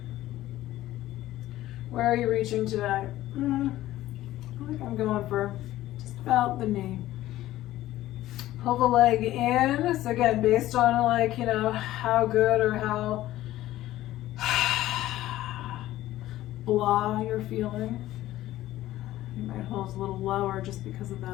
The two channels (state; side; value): quieter; right; 14.9 dB